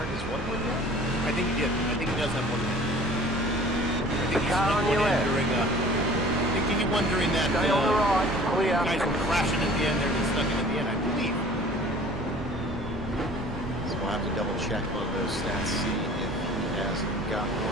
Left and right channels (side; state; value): right; noise; rumble, 13 dB below the sound